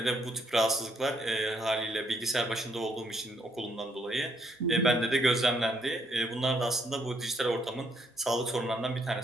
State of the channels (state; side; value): normal; both; correlation 0.72